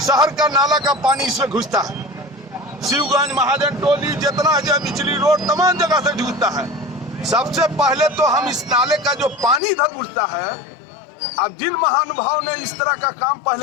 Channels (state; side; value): drops out; right; at 9.6 s